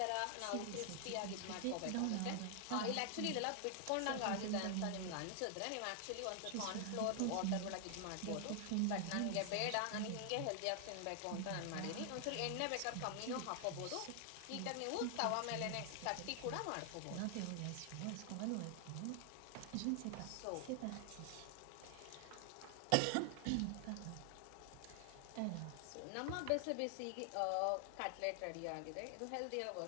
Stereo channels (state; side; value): different; both; correlation 0.00